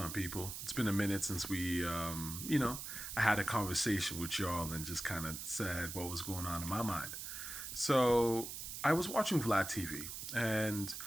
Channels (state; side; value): noise; right; hiss, 7 dB below the sound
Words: people? It's been a minute since I had a conversation with y'all and just kind of said what was going on in my mind. So I was watching Vlad TV, and